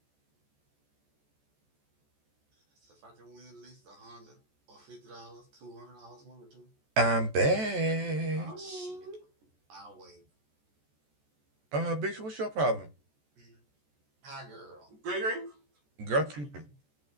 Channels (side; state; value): left; late; 14 ms